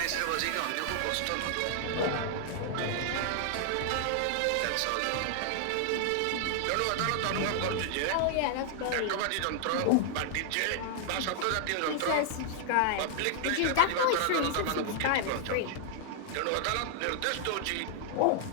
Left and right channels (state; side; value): different; both; correlation 0.00